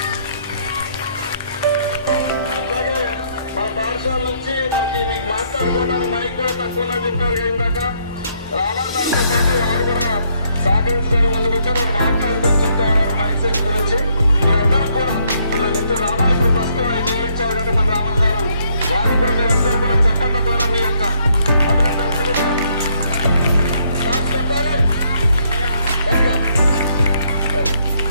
అట్లాగే మా పాఠశాల నుంచి మీకు మాట్లాడుకోవడానికి మైక్ కూడా తక్కువ చెప్పారు ఇందాక. రామాదాంతో పాటు వారు కూడా సహకరించుకొని ముందుకు వచ్చి మాట్లాడుకొని చెప్తారు మైక్ సెట్ గురించి. మీరందరూ కూడా ఇప్పుడు రామాయణ ప్రస్తుతం ఆయన ఇచ్చారు కాబట్టి మన రామన్ గారు వారు కూడా మీరందరూ కూడా చెప్పడం ద్వారా మీ యొక్క అభినందనలు తెలియజేయాలి. చెప్పాలి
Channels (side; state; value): both; inverted; correlation -0.70